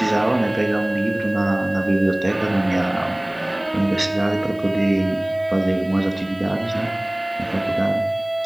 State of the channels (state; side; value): noise; right; hiss, 29 dB below the sound